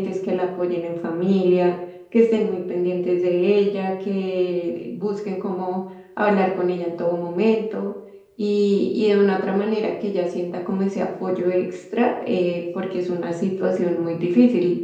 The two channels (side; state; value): both; identical; correlation 1.00